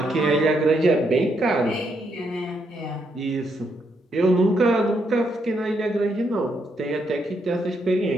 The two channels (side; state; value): both; normal; correlation 0.77